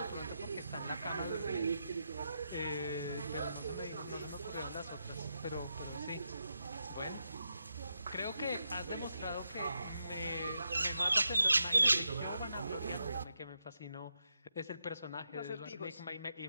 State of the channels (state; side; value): inverted; both; correlation -0.84